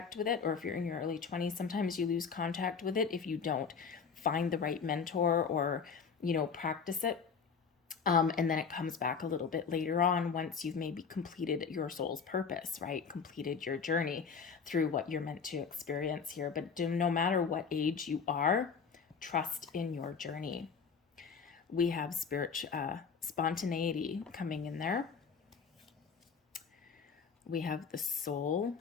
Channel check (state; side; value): quieter; right; 5.9 dB